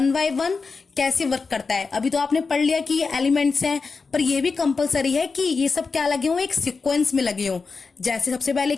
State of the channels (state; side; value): quieter; right; 4.6 dB